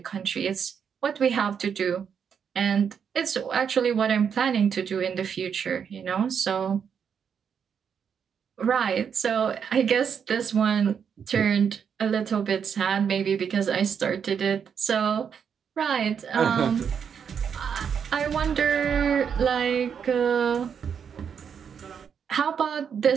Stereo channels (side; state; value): left; quieter; 7.3 dB